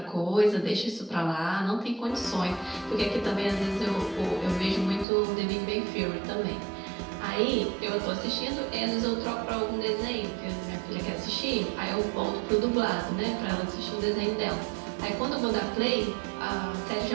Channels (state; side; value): drops out; left; at 5.1 s